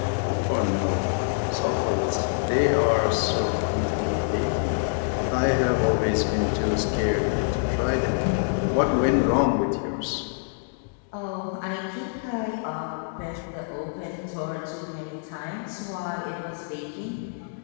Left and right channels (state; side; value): silent; right; digital silence